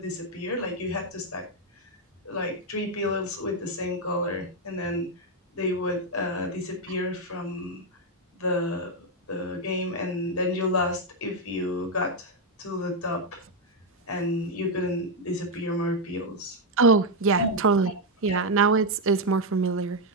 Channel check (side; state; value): both; normal; correlation 0.02